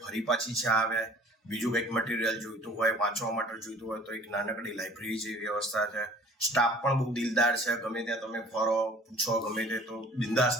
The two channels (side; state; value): both; normal; correlation 0.50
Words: ફરી પાછી ચા આવે. બીજું કંઈક મટીરિયલ જોઈતું હોય, વાંચવા માટે જોઈતું હોય તો એક નાનકડી લાઇબ્રેરી જેવી વ્યવસ્થા છે. સ્ટાફ પણ બહુ દિલદાર છે. ગમે ત્યાં તમે ફરો, પૂછો, ગમે તે તો